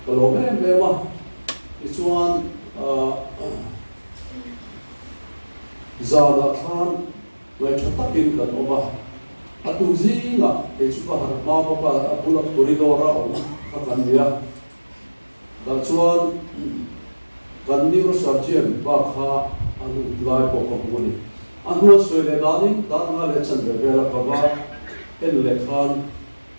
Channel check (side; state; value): both; inverted; correlation -1.00